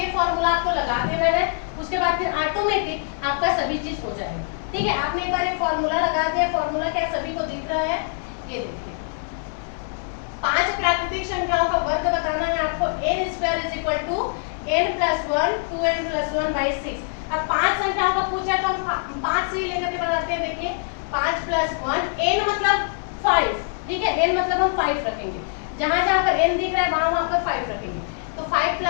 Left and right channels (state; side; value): silent; right; 63 dB below the other